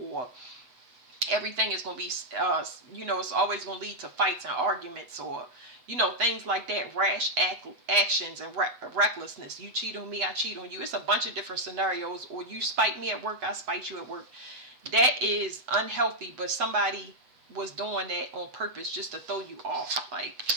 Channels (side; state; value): left; late; 8.0 ms